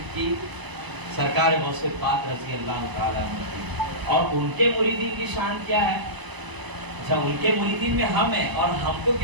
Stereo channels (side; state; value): left; late; 1.0 ms